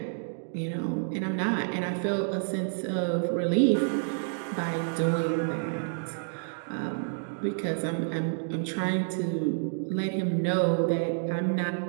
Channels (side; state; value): left; silent; digital silence